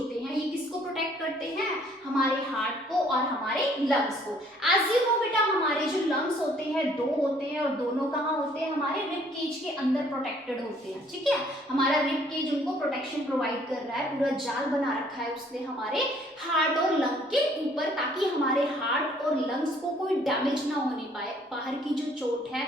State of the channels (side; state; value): both; normal; correlation 0.61